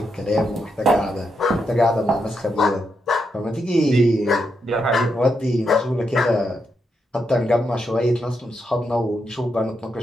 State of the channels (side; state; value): both; normal; correlation 0.82